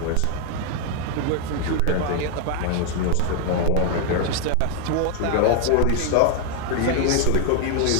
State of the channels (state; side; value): different; both; correlation 0.00